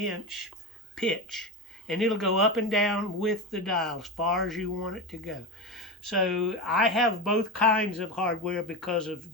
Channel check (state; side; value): normal; both; correlation 0.19